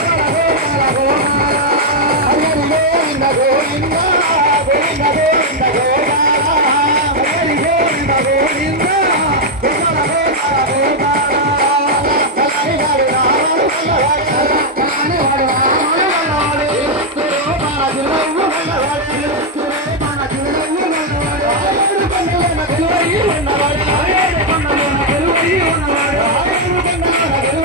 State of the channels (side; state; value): both; normal; correlation -0.01